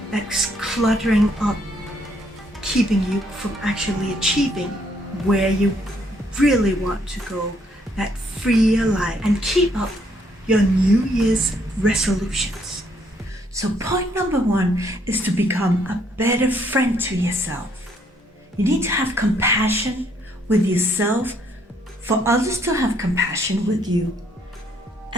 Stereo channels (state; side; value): normal; both; correlation 0.69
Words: that's cluttering up, keeping you from actually achieving where you really want to go, that freer life, and keep up your New Year's resolutions. So point number 1 is to become a better friend to yourself. You need to have compassion with yourself for others to have compassion with you,